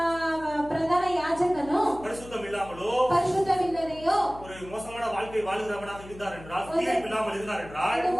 ಪ್ರಧಾನ ಯಾಜಕನು பரிசுத்தம் இல்லாமலோ ಪರಿಶುದ್ಧವಿಲ್ಲದೆಯೋ ஒரு மோசமான வாழ்க்கை வாழுகிறவனாக இருந்தார் என்றால், தீர்ப்பு இல்லாமல் இருந்தார் என்றால், ಒಂದು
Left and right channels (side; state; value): left; noise; hum, 17 dB below the sound